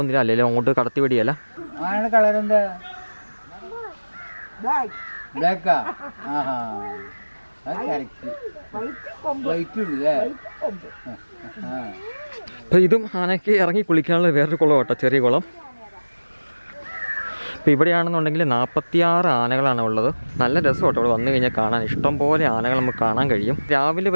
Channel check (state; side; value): inverted; both; correlation -1.00